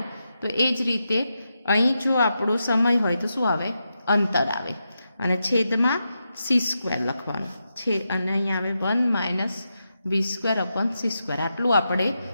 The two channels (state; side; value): inverted; both; correlation -0.87